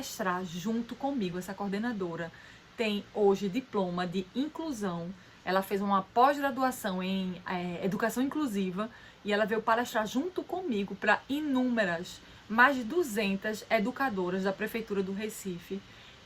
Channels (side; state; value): both; identical; correlation 1.00